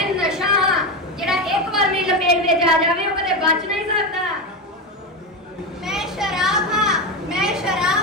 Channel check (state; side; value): normal; both; correlation 0.15